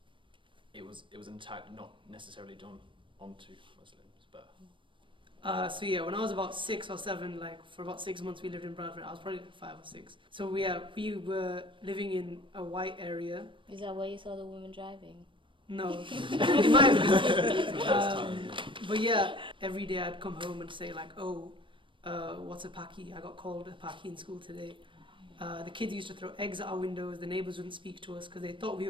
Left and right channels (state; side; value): late; left; 0.24 ms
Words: an attack not necessarily done onto Muslims. But So yeah, when I was about 6 or 7, like for about 6 months we lived in Bradford. I was probably like 5 or 6. So we were living in a white area. Is that where you saw the woman driving? No, it might have been. But yeah, every day I'd come home and say like, oh, what's a Paki? I got called a Paki in school today. The kids used to throw eggs at our windows. The neighbours wouldn't speak to us because they thought we